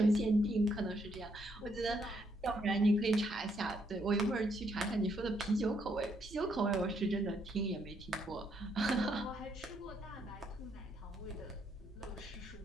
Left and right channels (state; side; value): normal; both; correlation 0.74